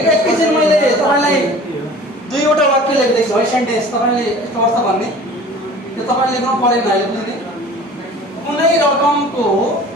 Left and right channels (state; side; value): normal; both; correlation 0.44